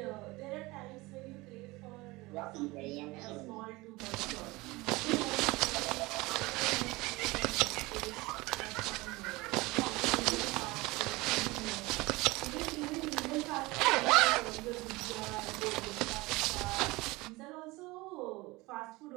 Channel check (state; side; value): quieter; left; 22.0 dB